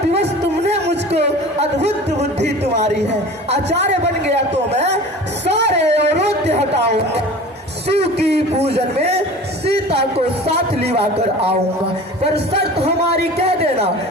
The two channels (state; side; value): normal; both; correlation 0.39